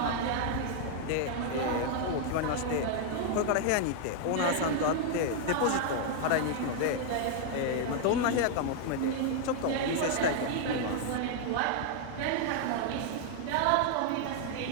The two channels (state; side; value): different; both; correlation 0.00